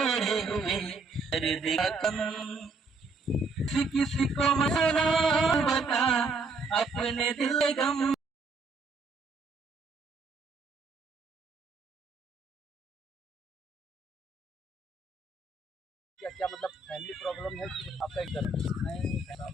हुए दर्द का कम। किसी को मना बता अपने दिल गम। क्या क्या मतलब फैमिली प्रॉब्लम है कि आपका एक नहीं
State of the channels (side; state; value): left; quieter; 3.7 dB